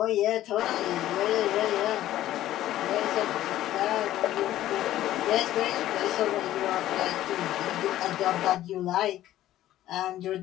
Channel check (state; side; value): quieter; right; 13.7 dB